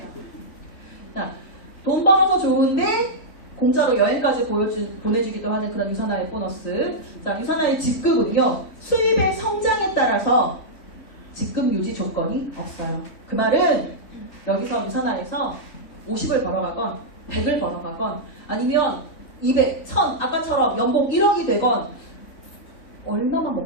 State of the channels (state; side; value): late; right; 3.9 ms